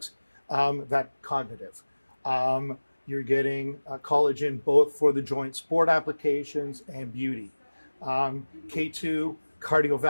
that cognitive. You're getting collagen both for the joint sport applications and beauty. K2,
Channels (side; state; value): both; inverted; correlation -1.00